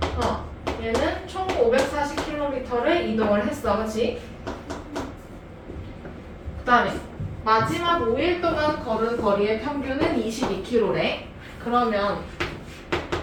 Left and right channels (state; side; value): identical; both; correlation 1.00